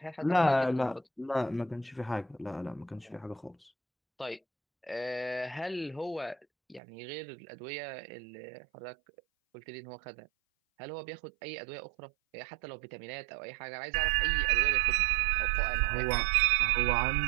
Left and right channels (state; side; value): drops out; left; at 6.8 s